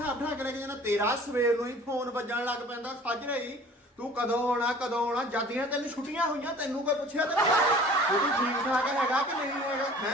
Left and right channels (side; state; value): both; normal; correlation 0.48